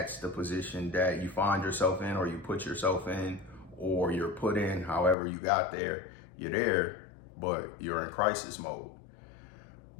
the position that you find yourself in, or you put yourself in, or you're put in. However you got there, you're there, but you're in crisis mode.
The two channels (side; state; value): right; drops out; at 5.2 s